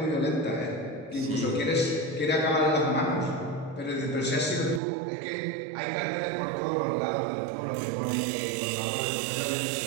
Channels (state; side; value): drops out; left; at 4.8 s